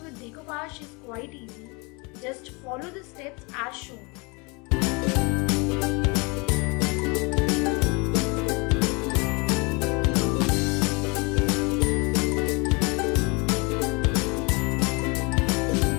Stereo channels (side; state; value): right; quieter; 29.1 dB